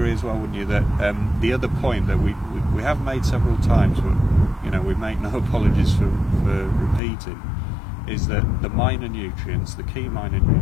as well, wouldn't you, that the other point that we have made several times, but you know, we make no apologies for repeating, is that the minor nutrients, the key minor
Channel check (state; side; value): drops out; right; at 7.0 s